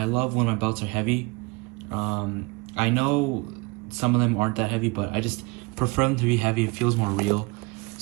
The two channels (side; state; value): left; quieter; 25.7 dB